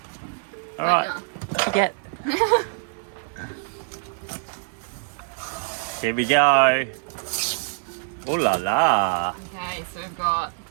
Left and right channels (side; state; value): left; silent; 62 dB below the other